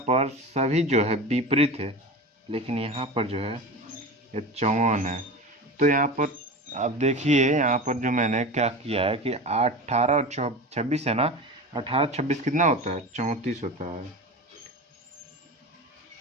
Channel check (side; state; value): both; normal; correlation 0.29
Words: पर सभी जो है विपरीत है, लेकिन यहाँ पर जो है ये 54 है। तो यहाँ पर आप देखिए, यहाँ पर जो मैंने क्या किया है कि 18 और 26 है ना, 18 26 कितना होता है, 34 होता है।